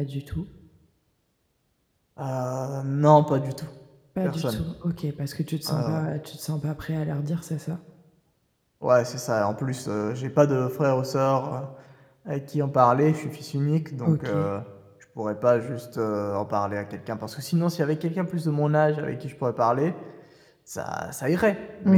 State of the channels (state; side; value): identical; both; correlation 1.00